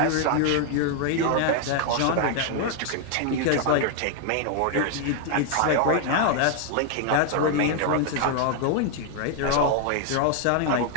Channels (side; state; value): both; different; correlation 0.00